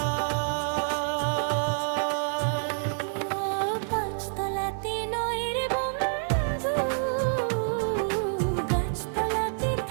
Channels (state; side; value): silent; left; 60 dB below the other